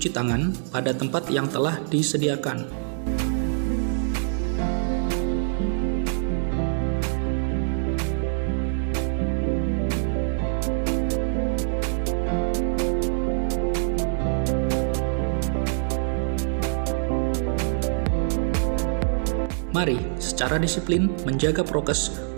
tangan pada tempat yang telah disediakan. Mari secara disiplin menjaga prokes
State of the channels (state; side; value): silent; left; digital silence